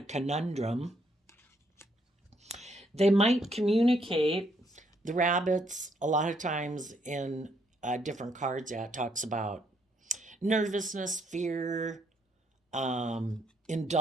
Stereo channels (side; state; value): both; normal; correlation 0.71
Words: conundrum. They might communicate. The rabbits, a lot of times in different cards, it talks about nervousness, fear,